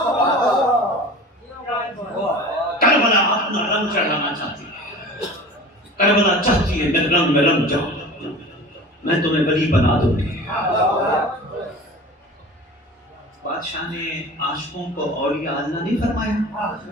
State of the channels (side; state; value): both; normal; correlation 0.38